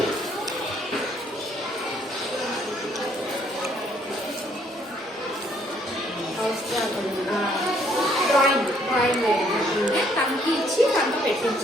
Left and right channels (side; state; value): both; normal; correlation 0.66